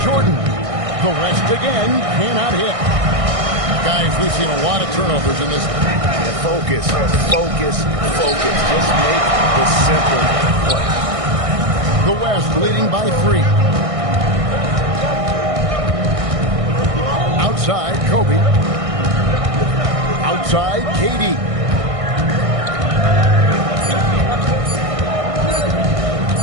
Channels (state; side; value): late; left; 1.6 ms